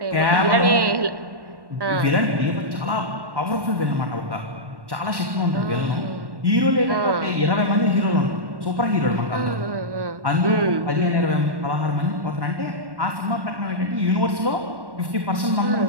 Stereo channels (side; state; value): left; late; 1.1 ms